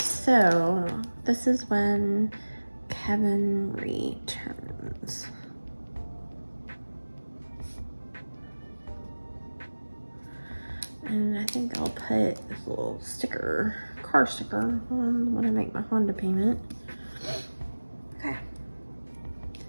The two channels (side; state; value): both; inverted; correlation -1.00